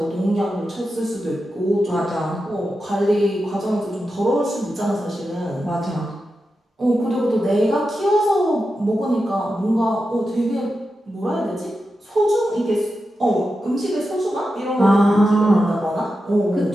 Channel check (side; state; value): both; normal; correlation 0.90